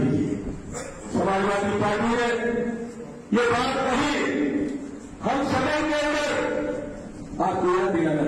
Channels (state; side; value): identical; both; correlation 1.00